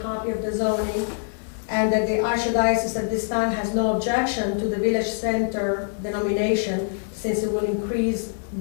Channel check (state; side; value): silent; right; digital silence